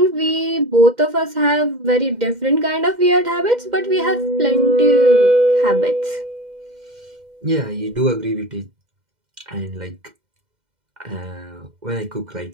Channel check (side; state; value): left; late; 2.1 ms